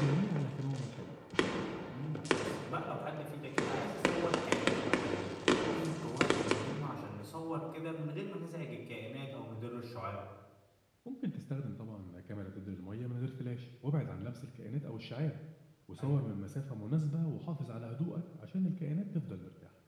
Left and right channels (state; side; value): identical; both; correlation 1.00